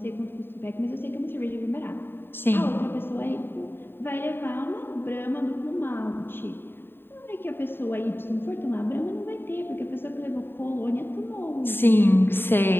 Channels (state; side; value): late; right; 0.10 ms